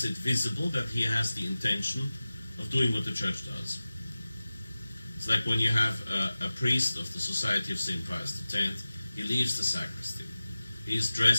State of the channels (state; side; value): inverted; both; correlation -0.96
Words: it visible that he has the intention of doing what the Church does. It's like when you have a priest of the Society of St. Pius X, he leaves the sacristy. He is